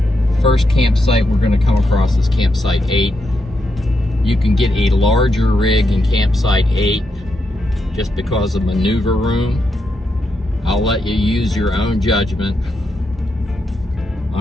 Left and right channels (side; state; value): both; normal; correlation 0.83